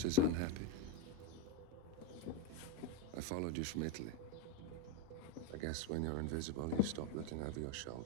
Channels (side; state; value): both; different; correlation 0.04